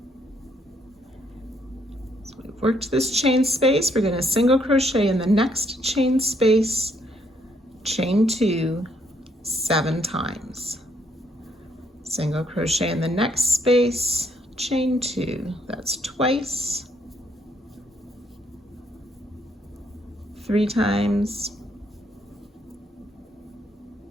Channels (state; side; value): normal; both; correlation 0.71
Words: So we worked this chain space, we're going to single crochet in the next chain space, chain 2 7 times. Single crochet in the next space, chain 2, that's twice, 3 times,